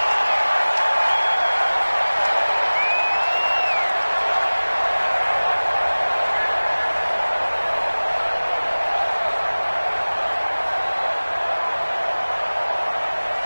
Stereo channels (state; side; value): inverted; both; correlation -1.00